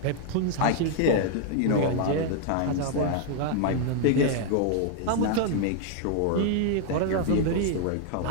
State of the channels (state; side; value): different; both; correlation 0.00